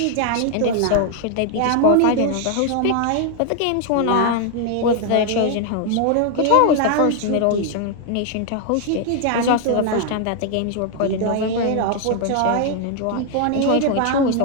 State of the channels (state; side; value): different; both; correlation 0.00